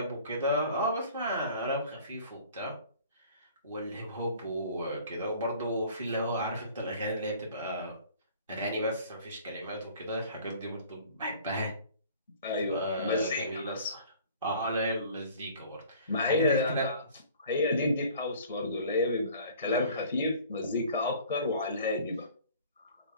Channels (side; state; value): both; inverted; correlation -0.50